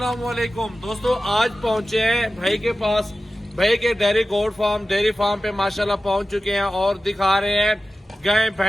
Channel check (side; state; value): both; normal; correlation 0.94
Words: दोस्तों, आज पहुंचे हैं भाई के पास। भाई के डेयरी डेयरी फार्म पे माशाल्लाह पहुंच चुके हैं और दिखा रहे हैं गाय